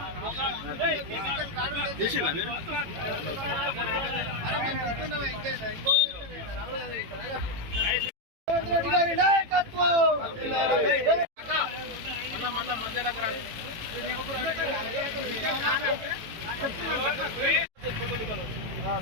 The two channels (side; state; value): left; late; 18 ms